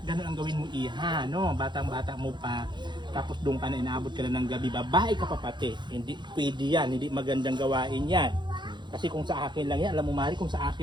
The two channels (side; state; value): left; late; 0.22 ms